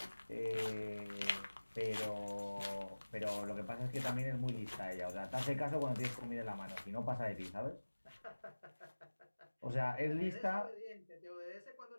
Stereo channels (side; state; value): both; inverted; correlation -1.00